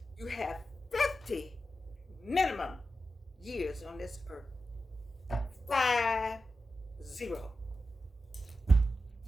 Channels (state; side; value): normal; both; correlation 0.90